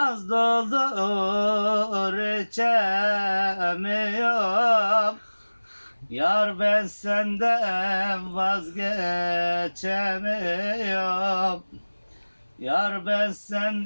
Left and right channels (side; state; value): both; inverted; correlation -1.00